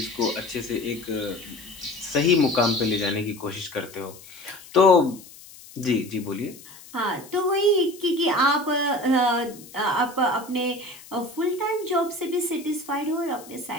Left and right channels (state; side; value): noise; left; hiss, 19 dB below the sound